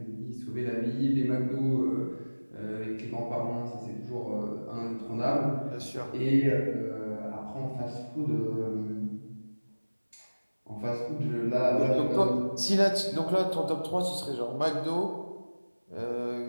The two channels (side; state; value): both; inverted; correlation -1.00